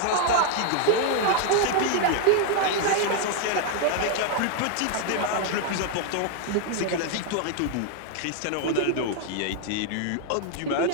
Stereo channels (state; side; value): different; both; correlation 0.00